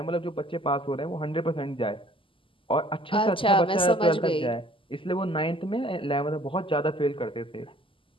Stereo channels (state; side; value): late; right; 0.25 ms